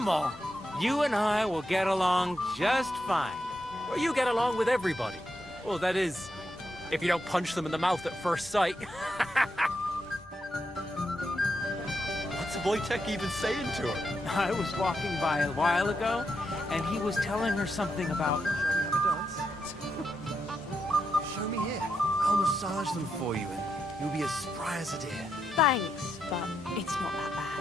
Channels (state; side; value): normal; both; correlation 0.83